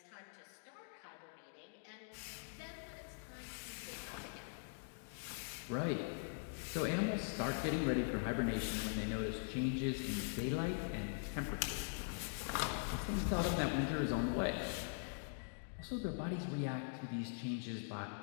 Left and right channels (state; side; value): silent; right; digital silence